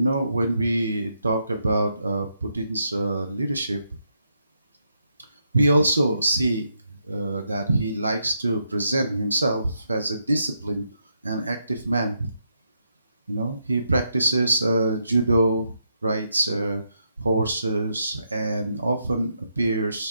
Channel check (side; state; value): both; inverted; correlation -0.79